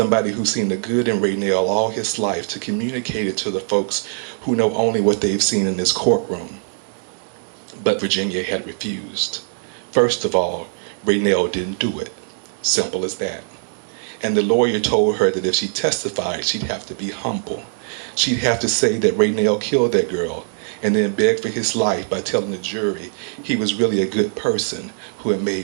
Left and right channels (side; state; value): left; silent; digital silence